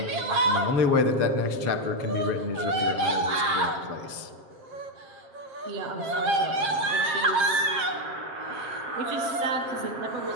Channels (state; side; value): late; left; 7.5 ms